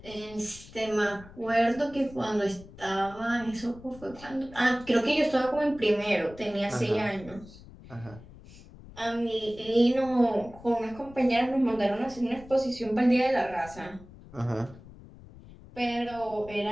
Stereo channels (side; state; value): left; noise; rumble, 19 dB below the sound